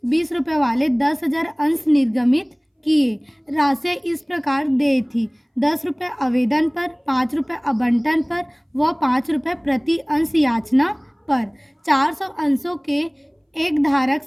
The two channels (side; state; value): both; identical; correlation 1.00